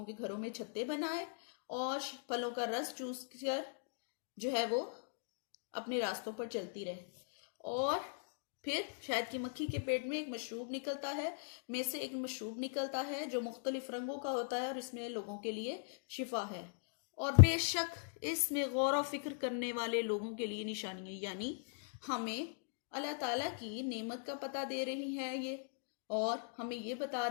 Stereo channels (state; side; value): silent; right; digital silence